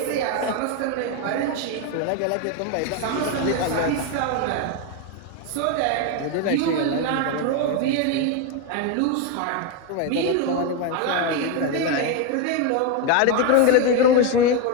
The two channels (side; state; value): both; different; correlation 0.02